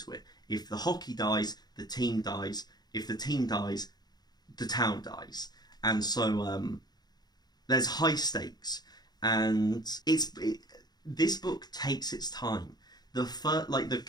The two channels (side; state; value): right; late; 0.20 ms